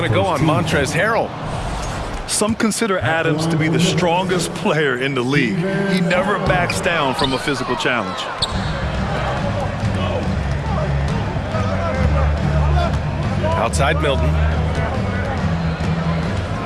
to go on Montrezl Harrell. Some consider Adams to be the strongest player in the league. He never backs down from a physical challenge. Outside Milton.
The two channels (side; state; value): both; identical; correlation 1.00